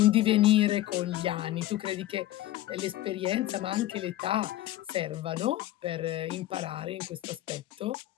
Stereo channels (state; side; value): quieter; right; 14.7 dB